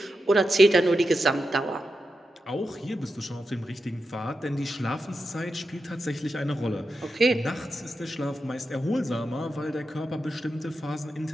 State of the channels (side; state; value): both; normal; correlation 0.89